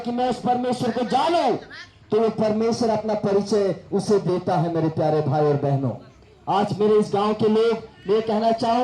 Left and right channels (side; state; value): both; identical; correlation 1.00